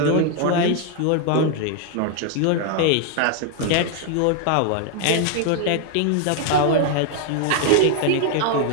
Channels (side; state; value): both; different; correlation 0.00